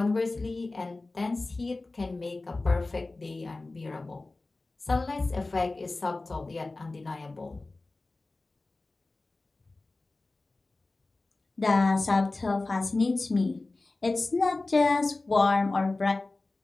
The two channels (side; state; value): right; quieter; 3.2 dB